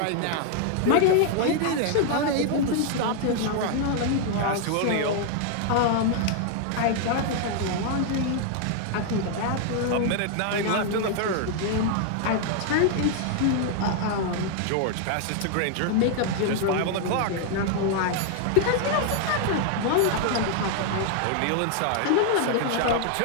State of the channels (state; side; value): different; both; correlation 0.00